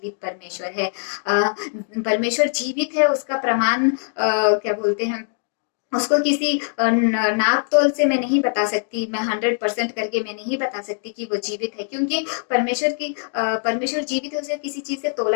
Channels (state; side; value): silent; right; 63 dB below the other